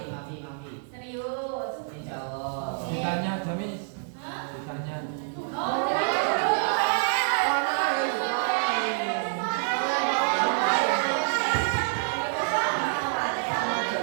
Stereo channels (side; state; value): left; silent; 58 dB below the other